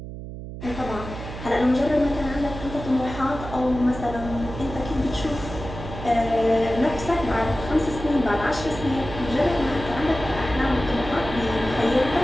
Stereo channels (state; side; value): noise; right; hum, 10 dB below the sound